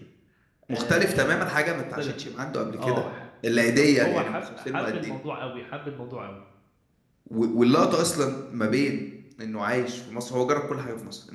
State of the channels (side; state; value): both; identical; correlation 1.00